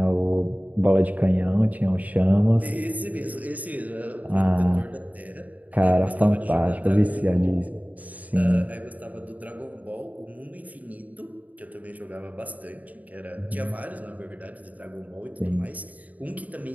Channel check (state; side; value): late; left; 0.075 ms